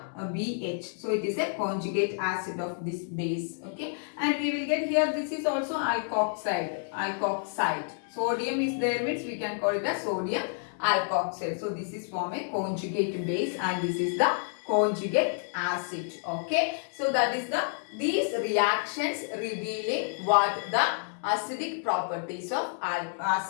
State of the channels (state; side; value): silent; right; digital silence